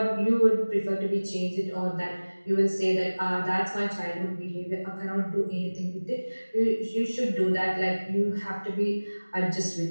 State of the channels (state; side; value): inverted; both; correlation -1.00